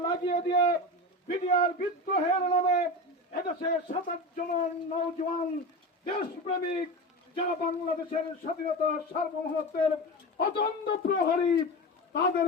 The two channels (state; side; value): normal; both; correlation 0.25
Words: লাগিয়ে দিয়ে বিডিআর বিদ্রোহের নামে এদেশের 27 জন নওজওয়ান দেশপ্রেমিক, যারা বাংলাদেশের স্বাধীনতা সার্বভৌমত্বের অতন্দ প্রহরী,